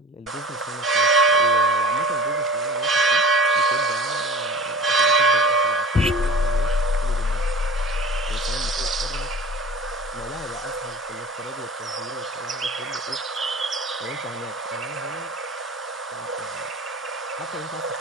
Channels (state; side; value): normal; both; correlation 0.38